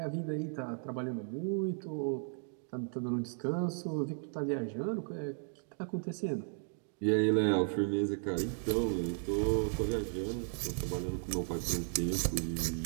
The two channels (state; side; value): silent; left; 54 dB below the other